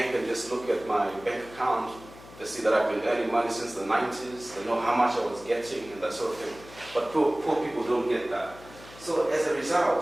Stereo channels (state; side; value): noise; left; hum, 19 dB below the sound